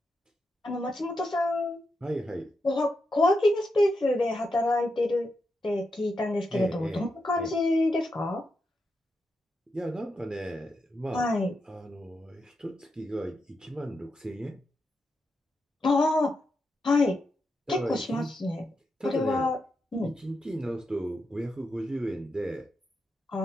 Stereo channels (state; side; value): normal; both; correlation 0.85